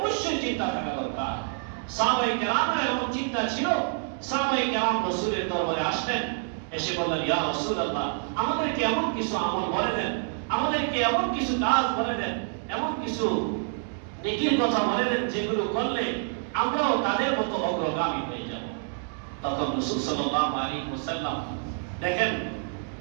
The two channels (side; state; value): left; silent; 60 dB below the other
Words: চিন্তা থাকা দরকার। সাহাবায়ে কেরামের এমন চিন্তা ছিল, সাহাবায়ে কেরাম রাসূলের দরবারে আসলেন, এসে বললেন, ইয়া রাসূলুল্লাহ, আমাদেরকে এমন কিছু আমল বলে দেন, আমাদেরকে এমন কিছু কাজ বলে দেন, এমন কিছু নেকির কথা বলে দেন যেগুলো করলে আমরাও তাদের মতো অগ্রগামী হয়ে যাব। তখন রাসূল সাল্লাল্লাহু আলাইহি ওয়াসাল্লাম, দেখেন